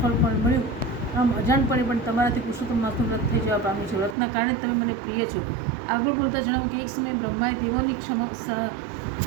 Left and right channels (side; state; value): left; drops out; at 4.2 s